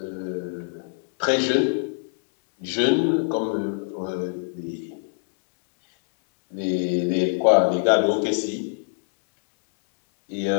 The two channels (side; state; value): right; silent; 63 dB below the other